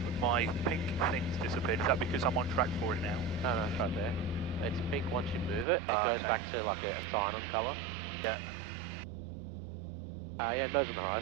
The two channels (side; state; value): left; drops out; at 5.7 s